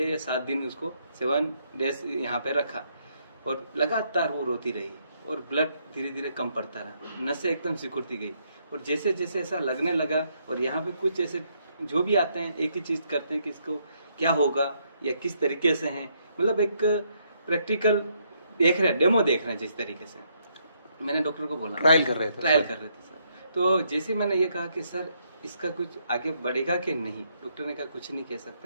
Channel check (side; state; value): both; inverted; correlation -0.74